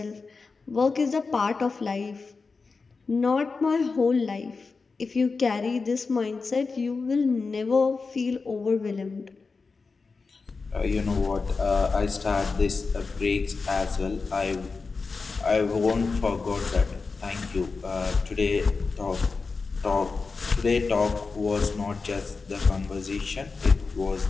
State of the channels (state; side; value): quieter; right; 4.4 dB